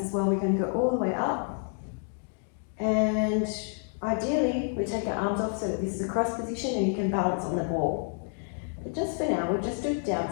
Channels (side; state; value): right; silent; 59 dB below the other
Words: as well, we're going to go all the way up. And ideally, we take our arms off so that this is a cross position and you can balance on the ball. But just for now, we'll just do it down